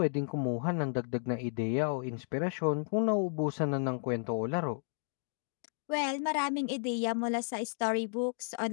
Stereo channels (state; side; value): silent; right; digital silence